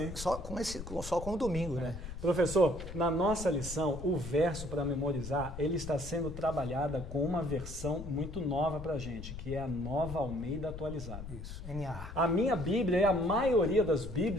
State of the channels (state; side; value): noise; left; rumble, 10 dB below the sound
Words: só com o domingo, né? Professor, na nossa lição, o verso para memorizar, ele está sendo trabalhada com uma versão muito nova para a gente, que é a Nova Almeida Atualizada. Isso, NA. A minha Bíblia e a maioria das